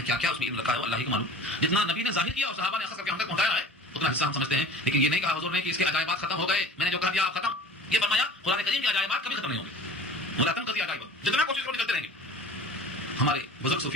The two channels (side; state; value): both; normal; correlation 0.42